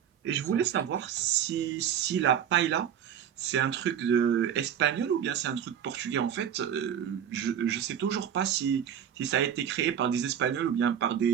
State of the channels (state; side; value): quieter; left; 9.1 dB